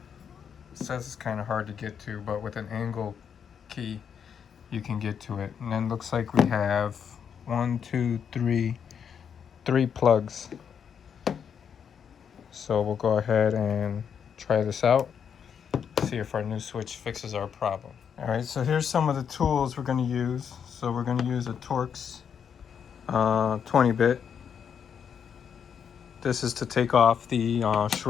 says it's kind of hard to get to, but with an angle key you can get to it. And then looks like we have 3 plugs. So we'll go ahead and try this out, see if our new switch fixes our problem. All right, so here's some of the tools we're going to use. So we're going to use a Torx 20-bit. This is to take off the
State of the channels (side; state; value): right; quieter; 7.5 dB